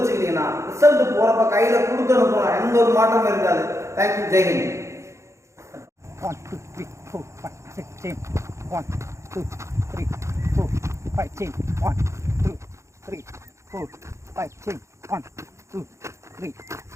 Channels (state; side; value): late; left; 0.14 ms